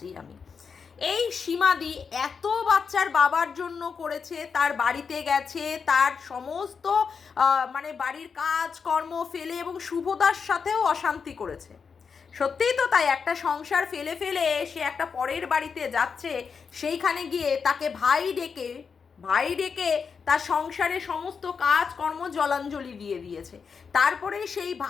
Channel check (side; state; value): right; quieter; 5.8 dB